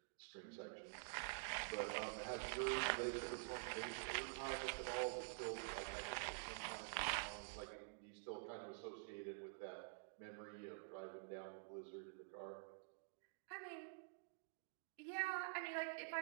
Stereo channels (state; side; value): silent; left; digital silence